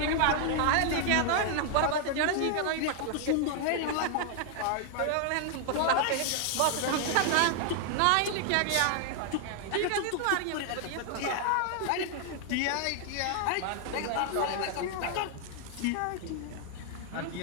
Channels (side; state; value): both; different; correlation 0.00